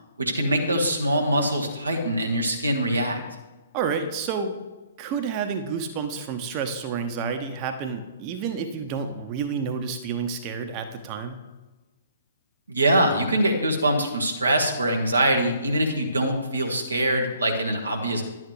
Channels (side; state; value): both; inverted; correlation -0.63